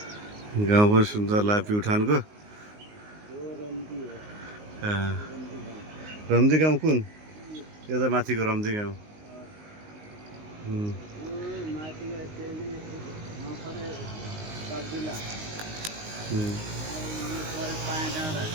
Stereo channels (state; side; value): late; left; 19 ms